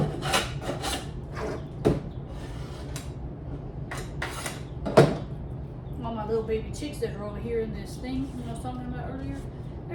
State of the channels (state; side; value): identical; both; correlation 1.00